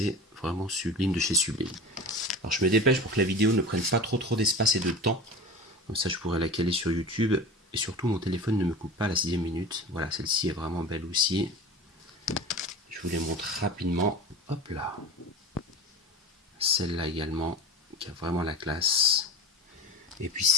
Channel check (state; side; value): normal; both; correlation 0.32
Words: vraiment sublime de chez Sublime. Alors je me dépêche pour que la vidéo ne prenne pas trop d'espace et de temps. Comme ça, je pourrais la caler sur YouTube. Et surtout, mon téléphone ne me coupe pas à la 6e minute. Voilà, celle-ci est vraiment belle aussi. Je vous les montre rapidement. Hop là. Celle-là également, qui a vraiment la classe. Et puis